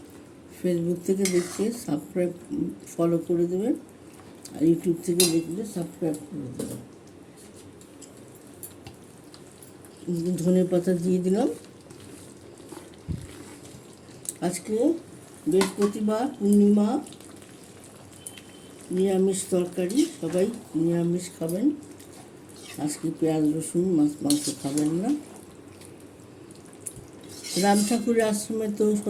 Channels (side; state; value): both; identical; correlation 1.00